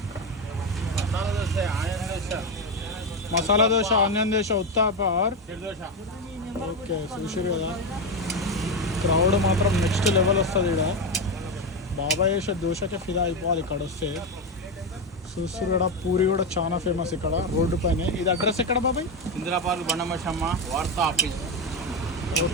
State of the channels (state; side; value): normal; both; correlation 0.12